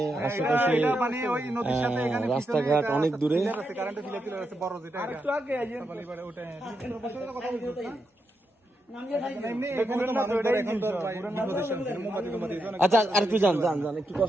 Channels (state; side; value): normal; both; correlation 0.84